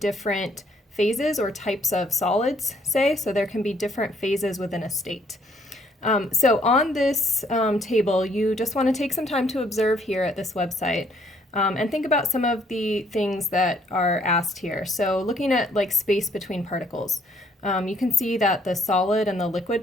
phases or types of solids, so there can be different phases within a state. So on this table, you just want to take some time to observe here at this website and think about some of the things that are asked here. So looking at like space between particles, you can see that the solid and the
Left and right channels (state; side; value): normal; both; correlation 0.66